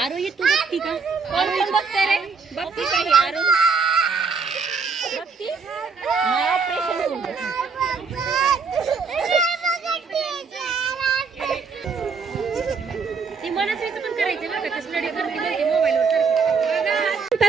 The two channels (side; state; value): left; quieter; 5.1 dB